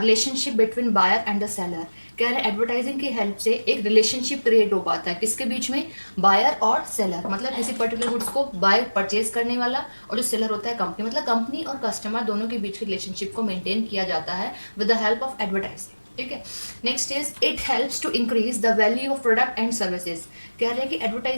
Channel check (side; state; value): both; inverted; correlation -1.00